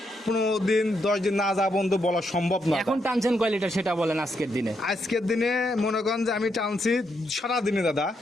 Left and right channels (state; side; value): normal; both; correlation 0.79